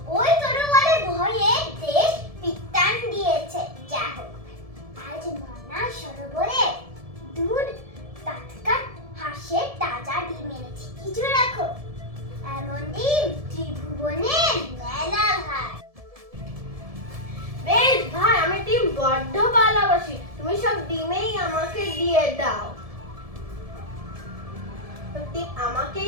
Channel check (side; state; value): left; late; 1.7 ms